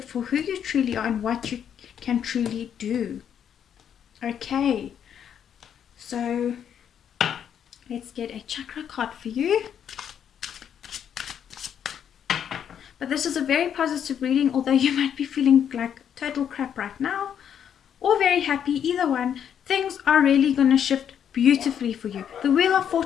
for who you truly are and what you can truly do. Okay, so let's get a chakra card for you. But this is a very positive reading, although you might be feeling like total crap right now, or very happy. Either one, things are really going to shift beautifully for you. The Wheel of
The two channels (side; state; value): right; quieter; 8.8 dB